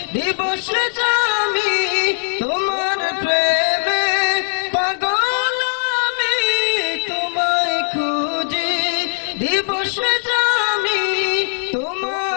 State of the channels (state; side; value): silent; right; digital silence